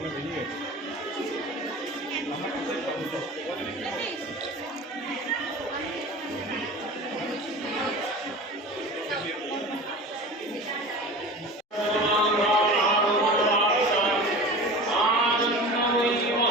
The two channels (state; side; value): normal; both; correlation 0.35